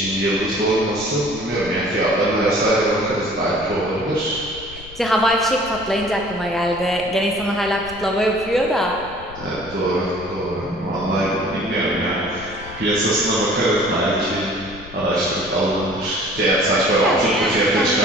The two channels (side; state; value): left; noise; rumble, 18 dB below the sound